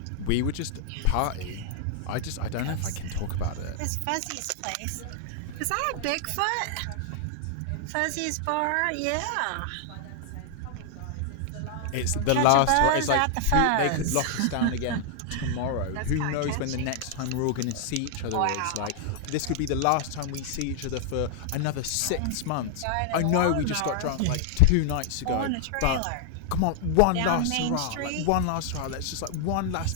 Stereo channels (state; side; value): different; both; correlation -0.01